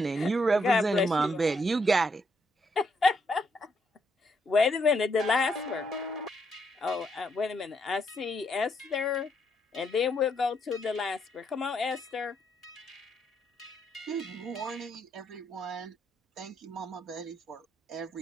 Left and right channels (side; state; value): both; normal; correlation 0.76